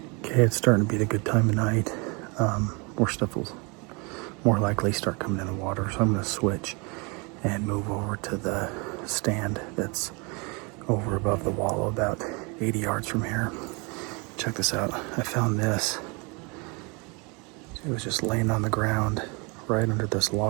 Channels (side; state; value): left; quieter; 30.1 dB